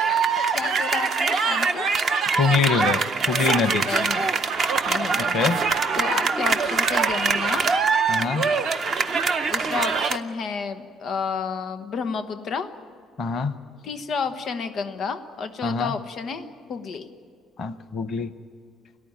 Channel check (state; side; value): normal; both; correlation 0.64